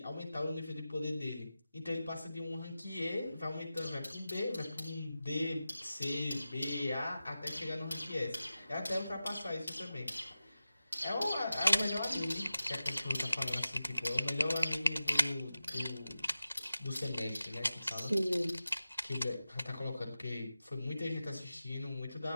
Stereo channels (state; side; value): inverted; both; correlation -0.93